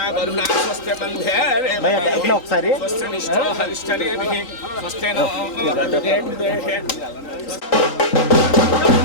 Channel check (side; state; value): right; late; 3.9 ms